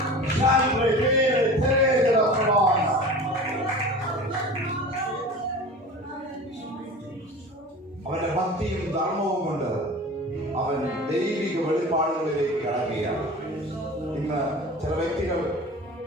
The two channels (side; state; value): both; normal; correlation 0.36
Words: അവന്റെ ഭക്തിയും ധർമ്മവും കൊണ്ട് അവൻ ദൈവിക വെളിപ്പാടുകളിലേക്ക് കടക്കുകയാണ്. ഇന്ന് ചില വ്യക്തികൾ